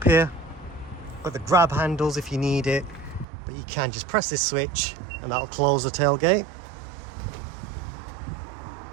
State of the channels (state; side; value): drops out; left; at 3.2 s